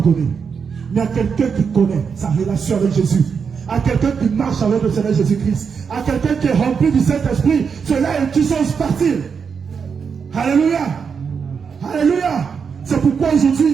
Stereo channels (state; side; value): quieter; left; 6.2 dB